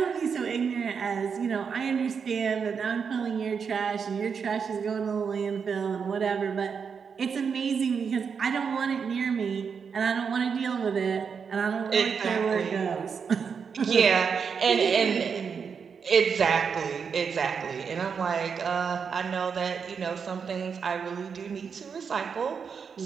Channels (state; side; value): quieter; left; 6.2 dB